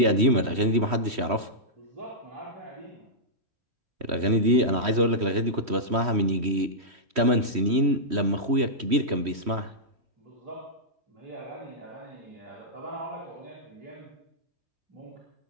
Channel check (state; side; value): late; left; 3.1 ms